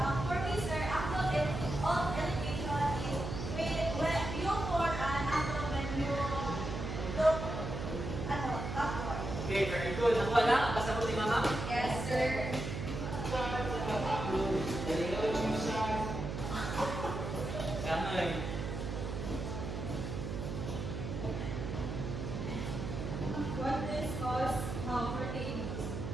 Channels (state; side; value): noise; right; hum, 5 dB below the sound